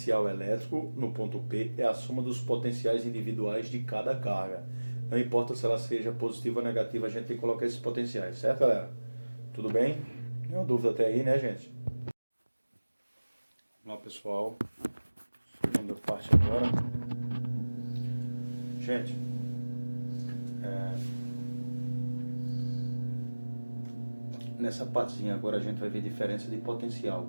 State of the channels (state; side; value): inverted; both; correlation -1.00